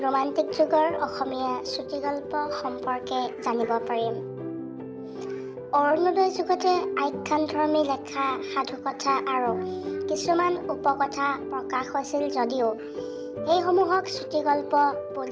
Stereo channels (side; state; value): both; identical; correlation 1.00